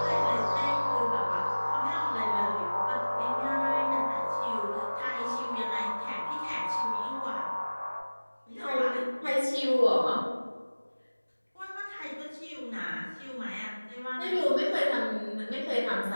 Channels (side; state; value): both; inverted; correlation -1.00